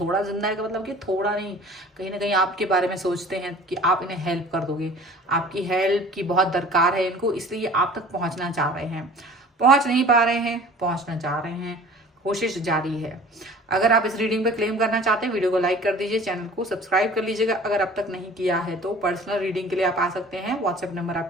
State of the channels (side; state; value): both; normal; correlation 0.46